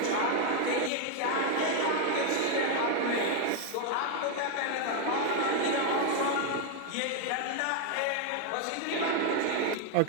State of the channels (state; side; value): different; both; correlation 0.01